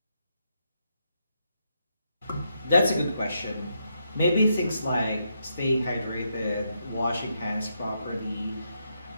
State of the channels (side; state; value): both; inverted; correlation -0.80